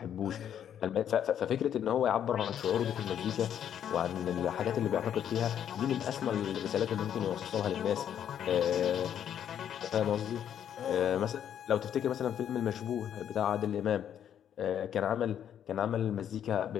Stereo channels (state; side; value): quieter; right; 9.5 dB